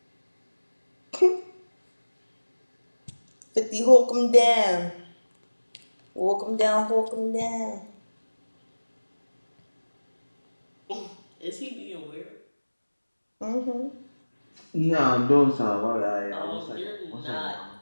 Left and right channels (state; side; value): inverted; both; correlation -1.00